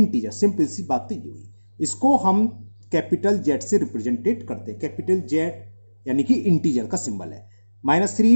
सिंपल सी बात तो ये हुई. इसको हम कैपिटल जेड से रिप्रेजेंटेड करते हैं. कैपिटल जेड यानी कि इंटीजर का सिंबल है.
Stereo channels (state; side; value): inverted; both; correlation -1.00